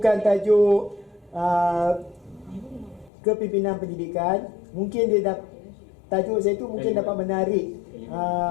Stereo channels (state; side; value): drops out; right; at 3.1 s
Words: tajuk kepimpinan pendidikan, mungkin dia tajuk saya tu mungkin dapat menarik